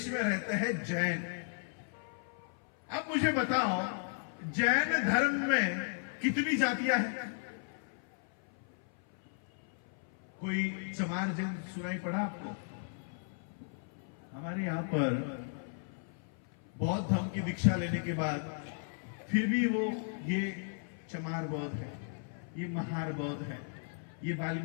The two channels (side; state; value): right; silent; 54 dB below the other